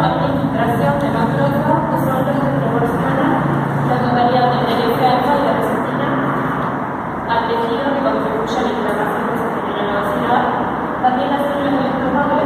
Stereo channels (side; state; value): both; identical; correlation 1.00